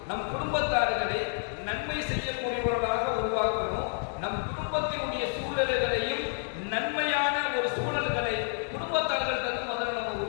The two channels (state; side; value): silent; right; 58 dB below the other